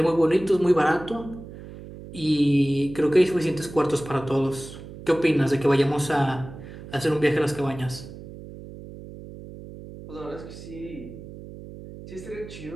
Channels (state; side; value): noise; right; hum, 14 dB below the sound